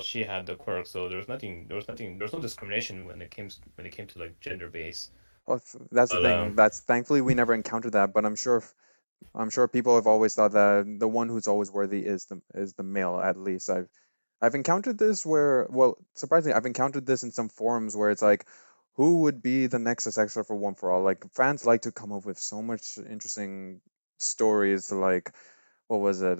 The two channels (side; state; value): both; inverted; correlation -1.00